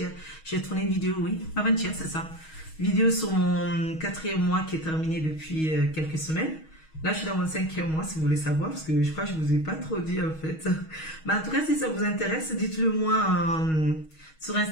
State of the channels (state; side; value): late; right; 6.3 ms